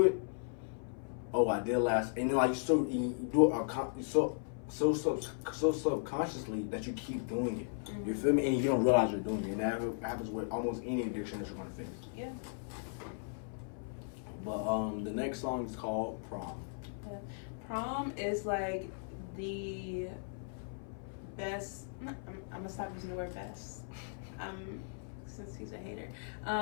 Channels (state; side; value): silent; right; 53 dB below the other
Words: it, oh, I did last. And then, like, you do it so subconsciously that you keep doing it. You feel me? And you don't realize you're doing it. And that happens with almost any addiction that you're gonna face. Yeah. But the next song is called Prom. Yeah. Prom is like the best. I'm gonna stop using the word best. Since he's a hater.